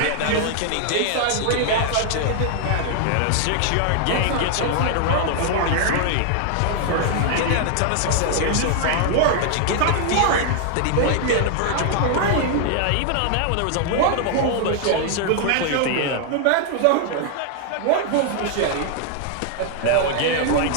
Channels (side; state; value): both; different; correlation 0.00